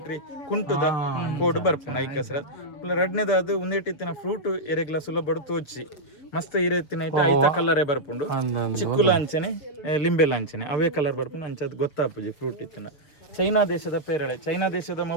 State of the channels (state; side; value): late; right; 7.1 ms